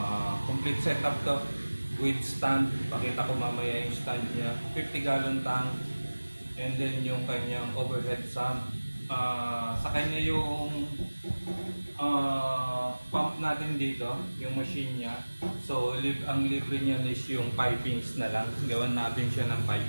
Complete setup to with stand. Pakita ko mamaya yung stand niya. 50-gallon tank. And then yung kanyang overhead sump. Sa kanya yung pump natin dito, yung machine niya. So, ang libre niya is yung pipings na lang. Gawan natin siya ng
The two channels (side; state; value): both; inverted; correlation -1.00